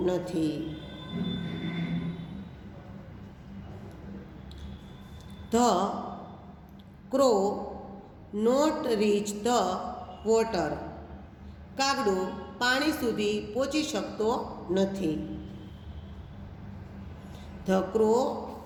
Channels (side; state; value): both; identical; correlation 1.00